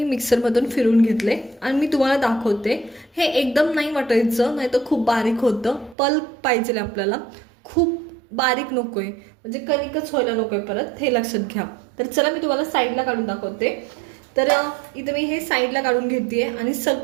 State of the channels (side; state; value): left; drops out; at 6.0 s